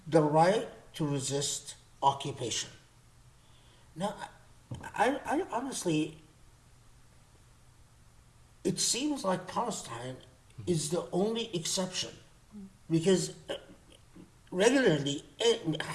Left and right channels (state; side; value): identical; both; correlation 1.00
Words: the right to resist occupation. Now, I honestly, it seems like Palestine is the only exception, because regularly